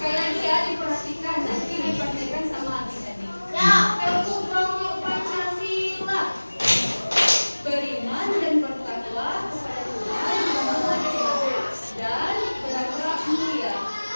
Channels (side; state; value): both; inverted; correlation -1.00